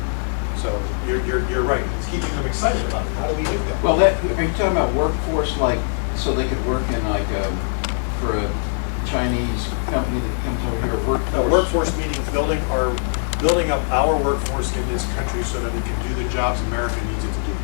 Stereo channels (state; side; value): silent; right; 64 dB below the other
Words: So you're right. It's keeping them excited about it. How do we do that? well, that, are you talking about workforce, like, so they could work in like, for a Chinese company that comes over here, workforce? Workforce meaning building up our workforce in this country so that it can do the jobs America needs it to do.